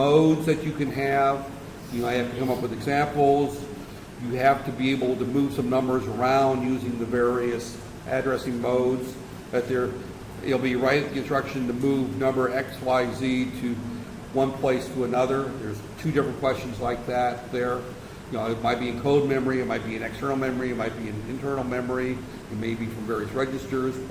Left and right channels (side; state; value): both; identical; correlation 1.00